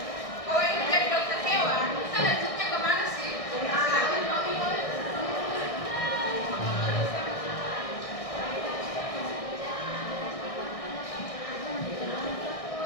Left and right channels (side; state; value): right; late; 1.6 ms